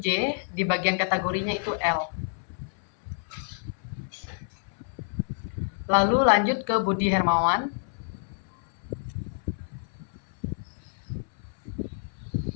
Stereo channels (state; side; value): silent; right; 59 dB below the other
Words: di bagian kategorinya itu L. Lalu lanjut ke Budi Hermawan.